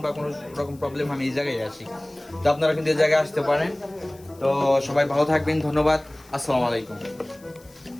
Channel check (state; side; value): noise; left; hiss, 26 dB below the sound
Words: বা কোনো রকম প্রবলেম আমি এই জায়গায় আসি। তো আপনারা কিন্তু এই জায়গায় আসতে পারেন। তো সবাই ভালো থাকবেন, ধন্যবাদ, আসসালামু আলাইকুম।